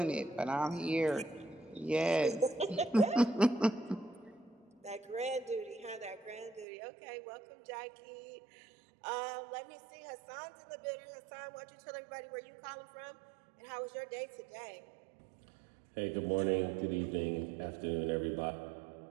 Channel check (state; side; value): drops out; left; at 6.7 s